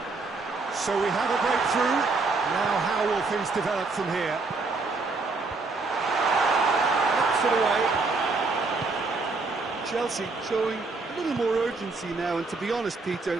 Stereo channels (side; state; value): left; quieter; 3.8 dB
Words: So we have a breakthrough. Now how will things develop from here? Knocks it away. Chelsea showing a little more urgency now, and to be honest,